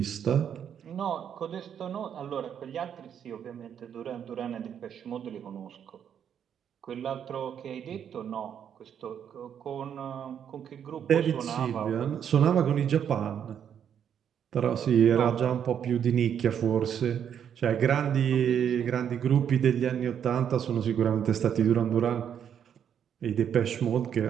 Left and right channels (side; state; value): left; quieter; 8.7 dB